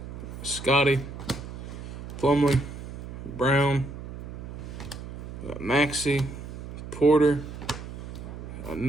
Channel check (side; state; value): right; noise; hum, 10 dB below the sound